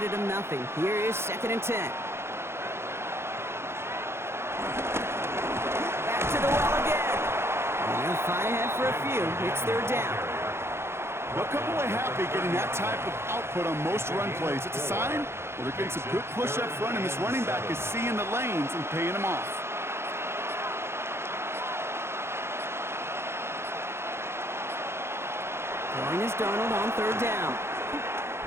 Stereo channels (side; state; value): left; late; 0.12 ms